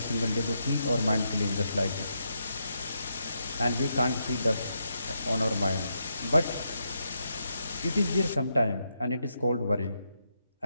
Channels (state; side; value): inverted; both; correlation -0.82